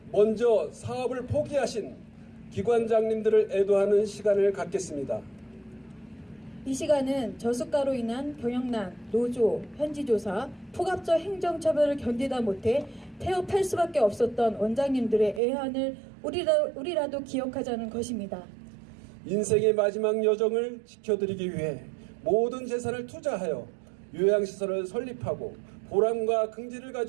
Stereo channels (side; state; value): left; drops out; at 15.4 s